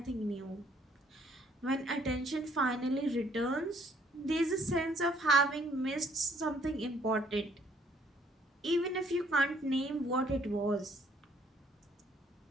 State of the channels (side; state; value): both; normal; correlation 0.63